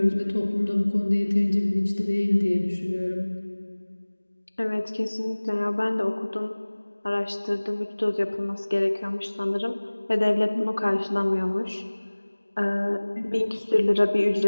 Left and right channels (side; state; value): both; inverted; correlation -1.00